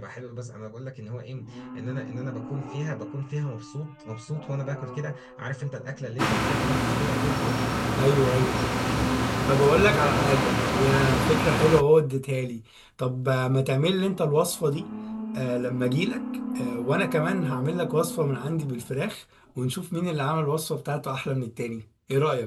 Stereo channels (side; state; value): both; identical; correlation 1.00